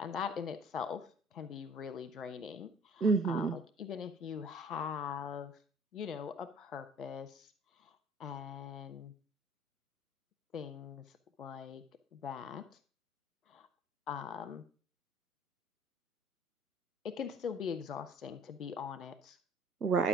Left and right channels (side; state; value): both; normal; correlation 0.51